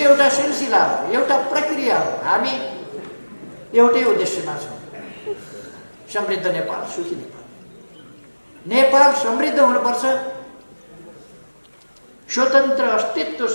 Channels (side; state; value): both; inverted; correlation -1.00